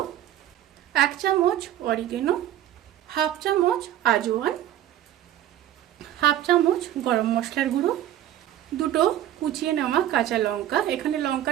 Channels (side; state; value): left; quieter; 12.2 dB